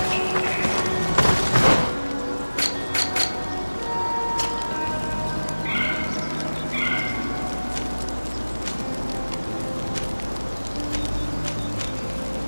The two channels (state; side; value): inverted; both; correlation -1.00